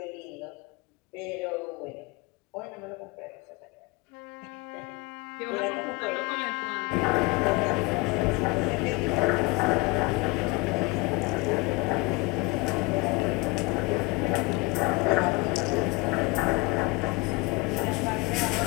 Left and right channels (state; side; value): quieter; right; 25.1 dB